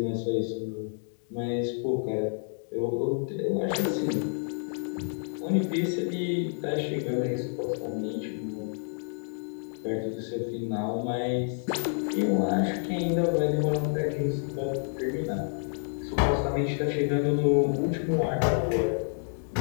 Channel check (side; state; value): right; silent; digital silence